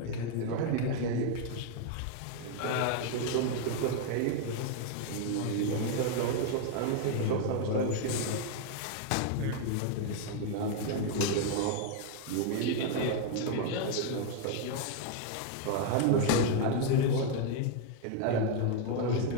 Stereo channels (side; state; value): both; different; correlation 0.00